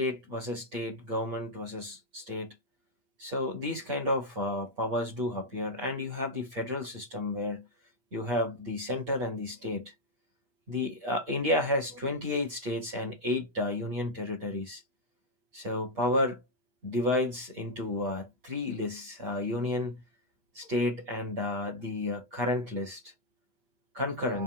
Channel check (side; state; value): left; late; 7.5 ms